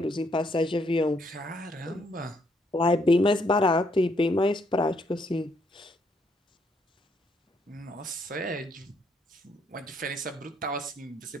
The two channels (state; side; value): normal; both; correlation 0.72